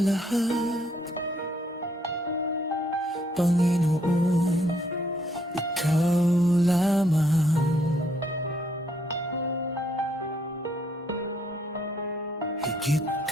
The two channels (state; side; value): normal; both; correlation 0.70